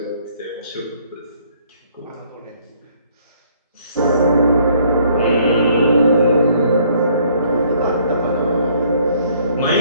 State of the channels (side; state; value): both; inverted; correlation -0.63